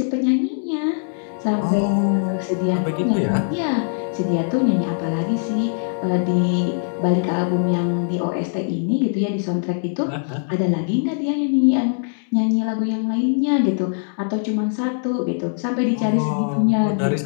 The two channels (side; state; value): right; silent; digital silence